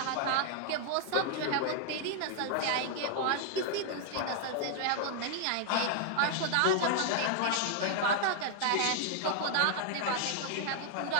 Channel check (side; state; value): both; different; correlation 0.00